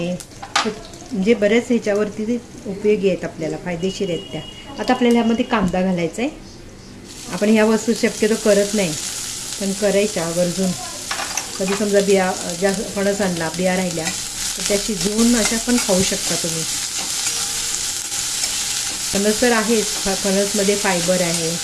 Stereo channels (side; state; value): both; identical; correlation 1.00